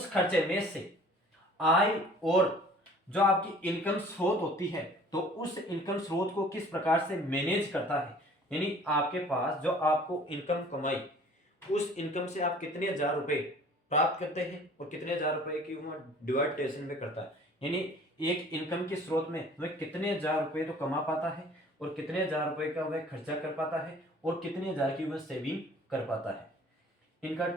खर्चे में से आय और जो आपकी इनकम स्रोत होती है तो उस इनकम स्रोत को किस प्रकार से मैनेज करता है, यानी आपके पास जो आपको इनकम कमाई, उस इनकम से आप कितने हजार रुपए प्राप्त करते हैं और कितने हजार रुपए की वह डिवाइडेशन में करता है, यानी एक इनकम के स्रोत में वह कितने हजार रुपए तो कमा पाता है और कितने हजार रुपए का वह खर्चा कर पाता है और कितने हजार की वह सेविंग कर पाता है। इनका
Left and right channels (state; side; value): normal; both; correlation 0.50